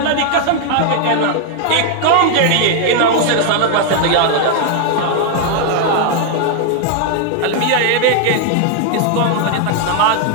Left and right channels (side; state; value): both; different; correlation 0.00